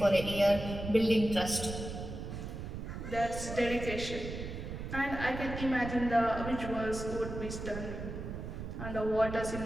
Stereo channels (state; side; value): noise; right; rumble, 7 dB below the sound